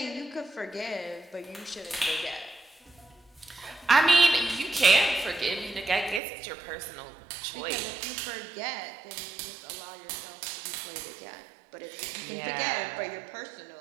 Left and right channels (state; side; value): drops out; left; at 6.2 s